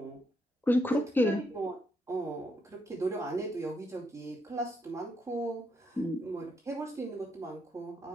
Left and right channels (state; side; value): normal; both; correlation 0.77